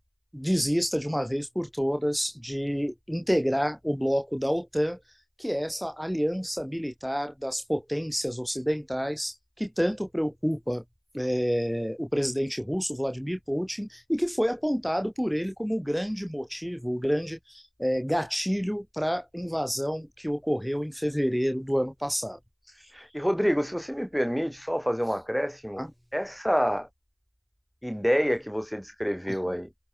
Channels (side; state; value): both; identical; correlation 1.00